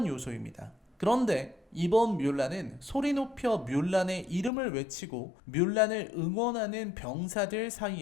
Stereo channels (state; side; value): drops out; right; at 4.5 s